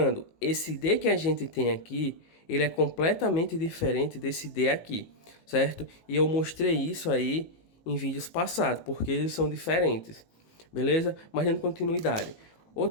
esse D que a gente tem aqui, ele é completamente diferente desse D aqui, certo? E eu mostrei isso aí em vídeos passados, porque eles são diferentes, beleza? Mas dando continuidade.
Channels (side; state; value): right; late; 18 ms